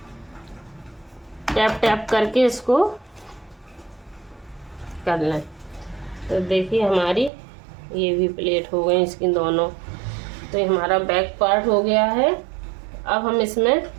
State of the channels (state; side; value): drops out; left; at 7.3 s